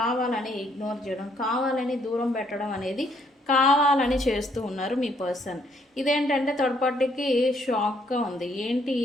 ఇగ్నోర్ చేయడం, కావాలని దూరం పెట్టడం అనేది కావాలని చేస్తూ ఉన్నారు మీ పర్సన్. ఇదేంటంటే థర్డ్ పార్టీకి షాక్గా ఉంది. ఏంటి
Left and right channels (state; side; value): normal; both; correlation 0.68